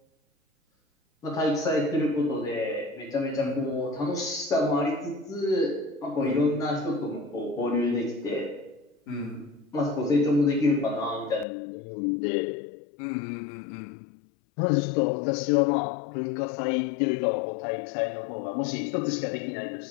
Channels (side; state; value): right; drops out; at 11.5 s